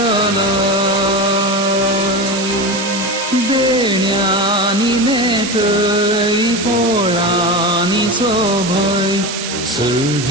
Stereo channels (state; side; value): noise; right; hiss, 6 dB below the sound